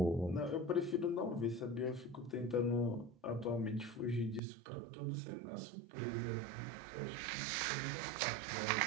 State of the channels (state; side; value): drops out; left; at 4.4 s